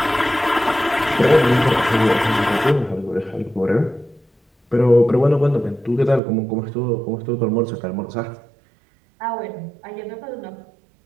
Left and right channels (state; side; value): drops out; left; at 6.2 s